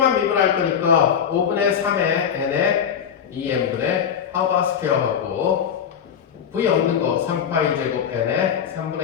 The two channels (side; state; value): right; quieter; 8.0 dB